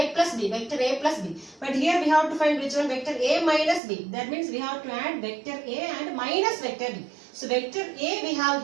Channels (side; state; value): left; drops out; at 3.8 s